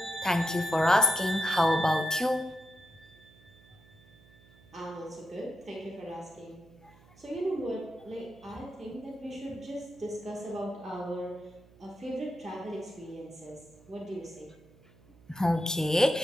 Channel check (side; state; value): right; noise; hum, 26 dB below the sound